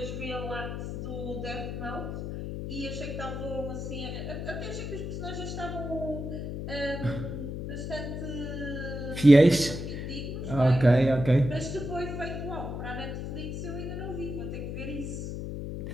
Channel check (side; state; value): left; noise; hum, 5 dB below the sound